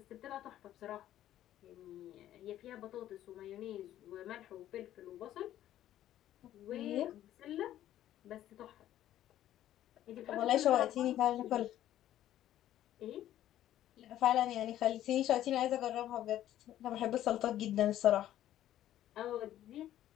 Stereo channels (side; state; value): right; quieter; 12.5 dB